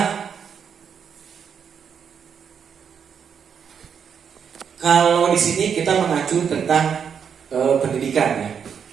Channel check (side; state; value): left; quieter; 7.3 dB